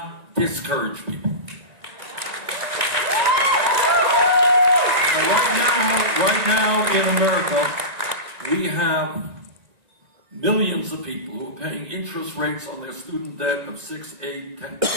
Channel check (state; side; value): late; left; 1.9 ms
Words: discourage people. Right now in America, we have millions of people who are paying interest rates on their student debt of 6, 8,